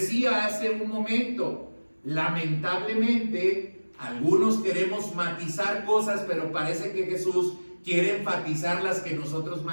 hace un momento, lamentablemente algunos queremos matizar cosas, pero parece que Jesús quiere enfatizar las que nosotros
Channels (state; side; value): inverted; both; correlation -1.00